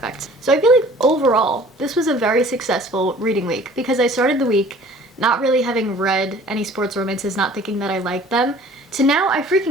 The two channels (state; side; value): normal; both; correlation 0.50